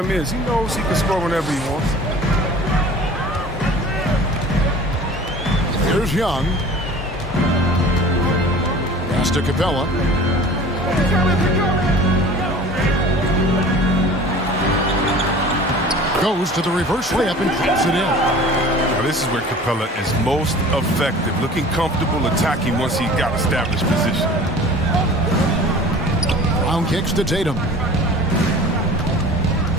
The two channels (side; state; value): both; normal; correlation 0.43